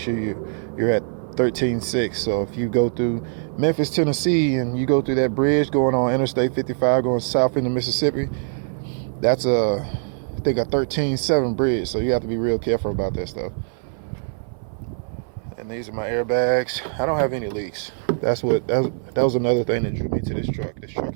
you're at 13.6. So if you go through Memphis, Tennessee, and you go through that bridge going on Interstate 55 going south into Mississippi, that's I think a 13.7 bridge. So you have to be real careful about that stuff. And these are my airbags. I don't have any leaks. That was another thing that drew me to this truck. This truck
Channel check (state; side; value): silent; left; 60 dB below the other